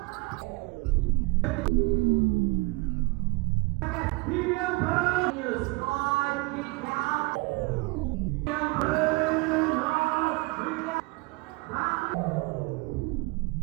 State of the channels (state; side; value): quieter; left; 25.5 dB